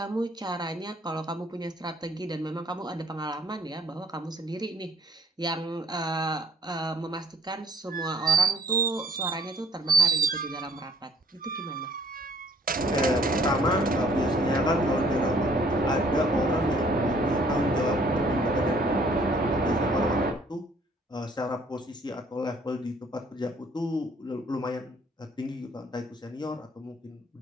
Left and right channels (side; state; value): both; normal; correlation 0.59